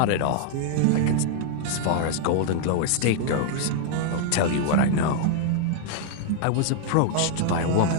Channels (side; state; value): both; different; correlation -0.01